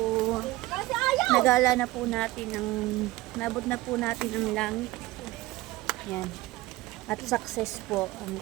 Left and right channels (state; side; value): quieter; left; 18.6 dB